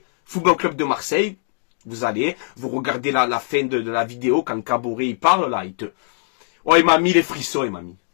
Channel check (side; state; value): right; silent; digital silence